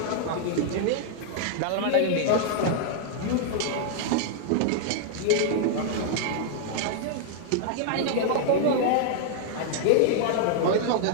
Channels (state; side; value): different; both; correlation -0.01